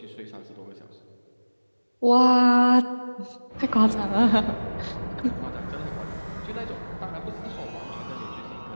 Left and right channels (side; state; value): both; inverted; correlation -1.00